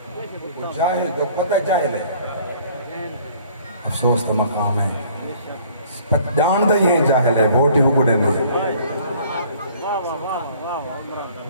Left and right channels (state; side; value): inverted; both; correlation -0.55